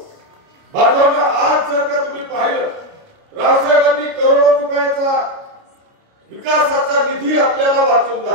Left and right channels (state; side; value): late; left; 29 ms